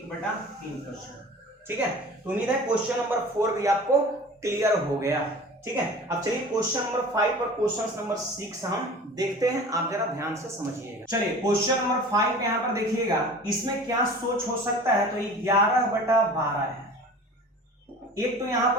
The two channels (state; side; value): normal; both; correlation 0.41